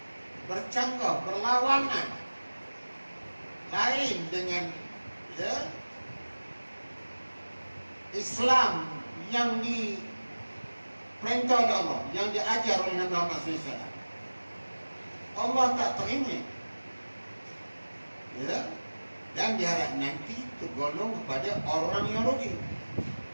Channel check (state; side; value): inverted; both; correlation -1.00